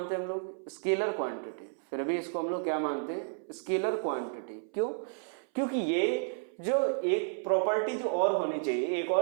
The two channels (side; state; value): left; silent; 57 dB below the other